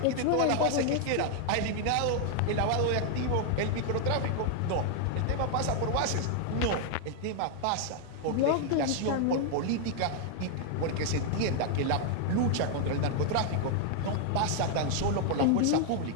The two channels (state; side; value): different; both; correlation 0.00